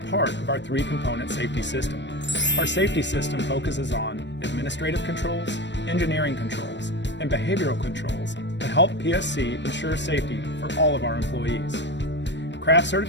of our three-component safety system. Our safety system focuses on administrative controls, engineering controls, and behavioral controls to help PSC ensure safety for all of our employees. Craft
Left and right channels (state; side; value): late; right; 0.52 ms